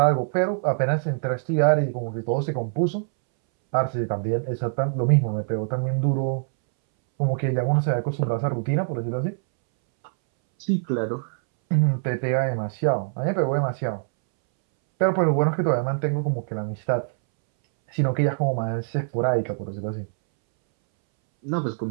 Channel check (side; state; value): left; silent; 62 dB below the other